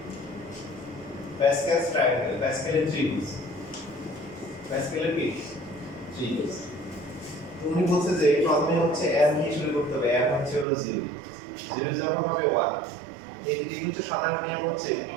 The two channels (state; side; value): drops out; left; at 10.7 s